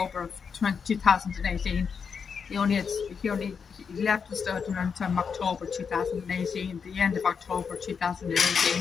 of 2018. He left the stud around October 2018, the end of October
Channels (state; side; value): quieter; right; 6.2 dB